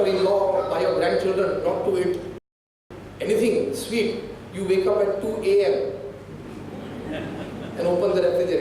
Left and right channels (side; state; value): both; identical; correlation 1.00